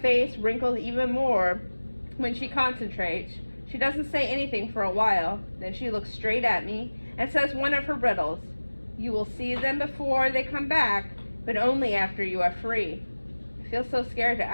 face wrinkles even more when she concentrates. She doesn't say anything for a while. Then she looks straight at me and says one of her riddles. You will see them before they come back, but only after you are free. I feel so scared to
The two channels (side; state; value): both; inverted; correlation -1.00